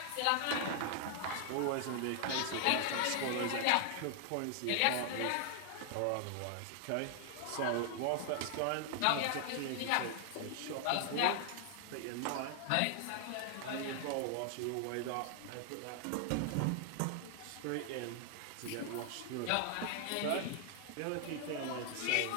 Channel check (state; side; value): different; both; correlation 0.00